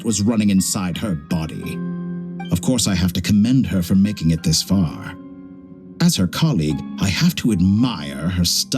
was running inside her body. Of course, I have to commend her for making it this far. As her colleague, I have to admire her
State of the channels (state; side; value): identical; both; correlation 1.00